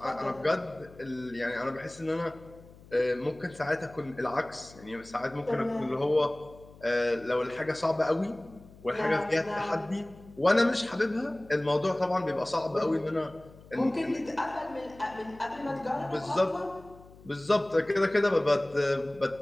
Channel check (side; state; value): left; noise; hum, 22 dB below the sound